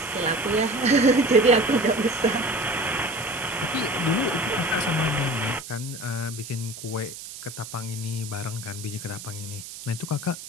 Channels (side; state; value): right; noise; hiss, 12 dB below the sound